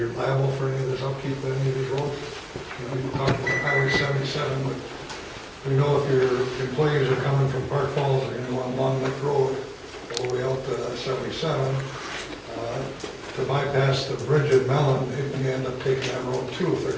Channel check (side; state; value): both; identical; correlation 1.00